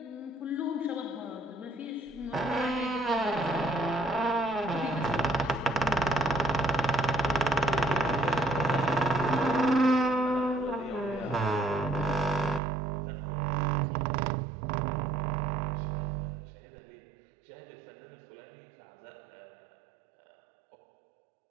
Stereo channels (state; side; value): drops out; left; at 12.6 s